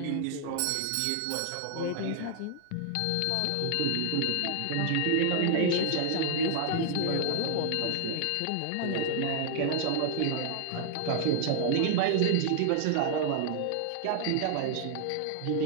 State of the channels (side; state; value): both; different; correlation 0.00